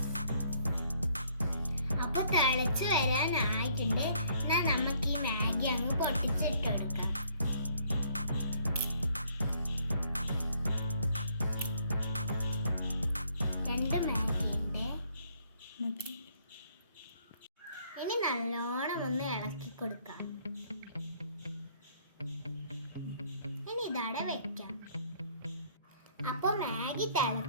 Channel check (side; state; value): both; inverted; correlation -0.64